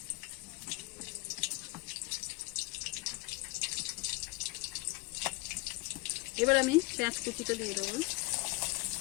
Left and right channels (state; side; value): quieter; right; 24.4 dB